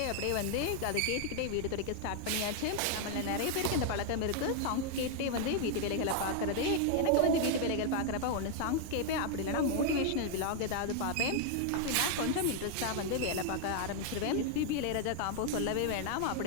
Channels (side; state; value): both; different; correlation 0.00